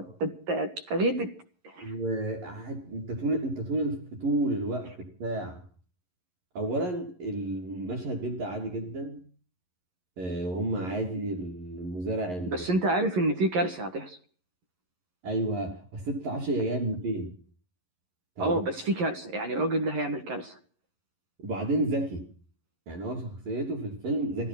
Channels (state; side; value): late; left; 11 ms